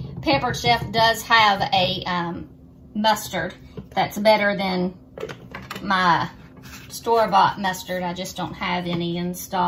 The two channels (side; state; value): both; identical; correlation 1.00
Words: Pampered Chef does have a mustard that's better than my store-bought mustard. I just don't have any in